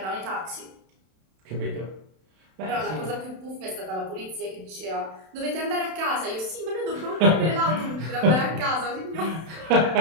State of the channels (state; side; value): late; left; 32 ms